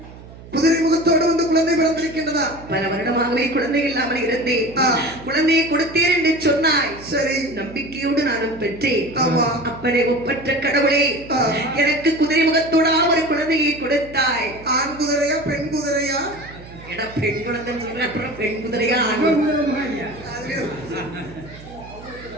குதிரை முகத்தோடு வந்து குழந்தை பிறந்திருக்கின்றதா? பல வருடமாகவே குழந்தை இல்லாமல் இருந்தேன். குழந்தையை கொடுத்தேன் என்று சொன்னாய். சரி. நம்பிக்கையோடு நானும் பெற்றேன். ஆமா. அப்பனே ஒப்பற்ற கடவுளே, எனக்கு குதிரை முகத்தோட ஒரு குழந்தையை கொடுத்தாய். ஆண் குதிரையா பெண் குதிரையா? எடா, பெண் குழந்தை சொல்ற, அப்புறம் பெண் குதிரையா ஆண்?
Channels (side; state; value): right; noise; hum, 18 dB below the sound